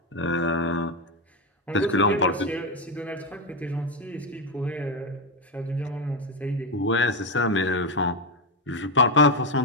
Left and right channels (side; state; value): both; normal; correlation 0.09